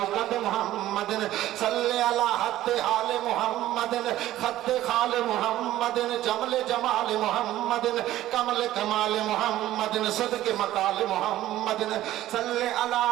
محمد صل على حد آل محمد خط خال محمد جمل جمال محمد کمل کمال محمد صدق مقال محمد صل على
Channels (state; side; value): quieter; left; 14.3 dB